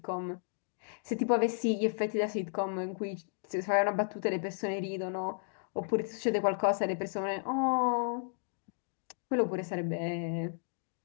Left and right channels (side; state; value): right; silent; digital silence